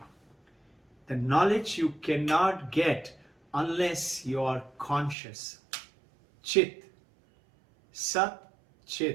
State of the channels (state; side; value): drops out; left; at 5.2 s